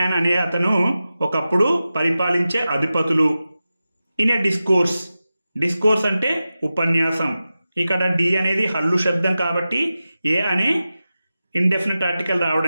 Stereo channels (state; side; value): inverted; both; correlation -0.93